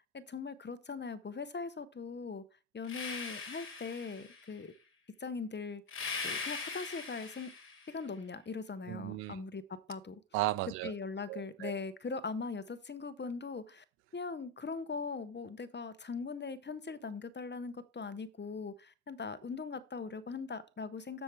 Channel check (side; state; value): both; normal; correlation 0.12